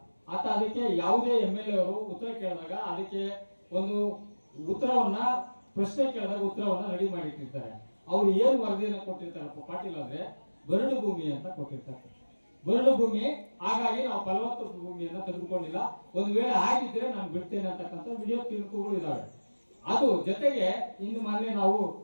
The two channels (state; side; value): inverted; both; correlation -1.00